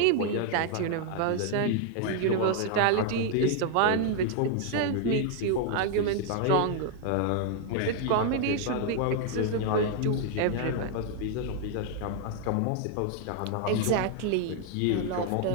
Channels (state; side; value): different; both; correlation 0.00